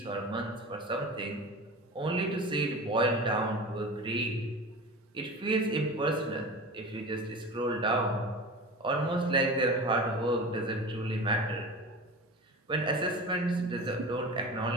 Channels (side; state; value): both; normal; correlation 0.33